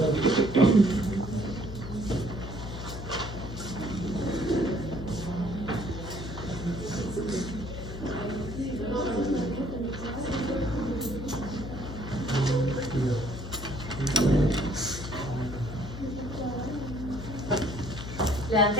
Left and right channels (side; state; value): left; noise; hum, 9 dB below the sound